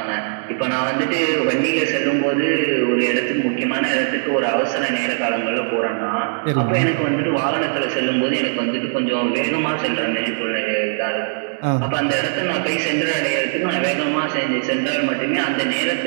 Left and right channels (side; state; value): left; silent; digital silence